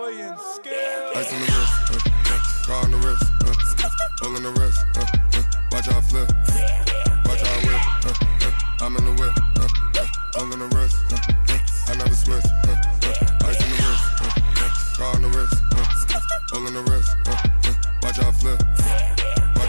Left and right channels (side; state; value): both; inverted; correlation -1.00